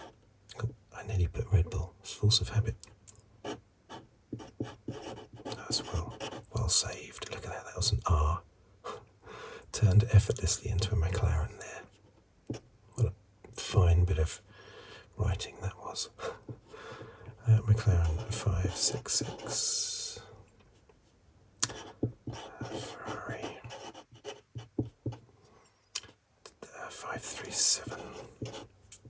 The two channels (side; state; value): both; identical; correlation 1.00